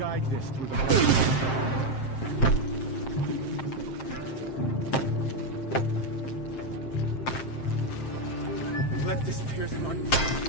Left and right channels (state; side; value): late; right; 7.6 ms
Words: this through the... Let this pierce my...